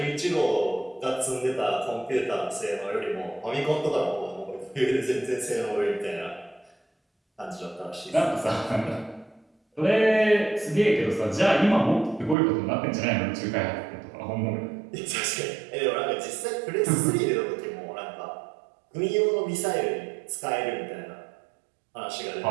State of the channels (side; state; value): left; drops out; at 12.4 s